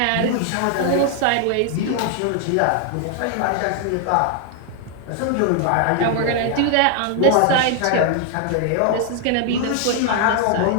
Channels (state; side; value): different; both; correlation 0.00